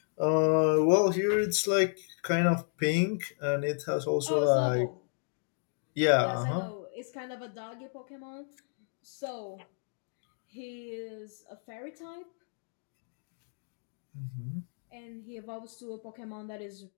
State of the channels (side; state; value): right; silent; digital silence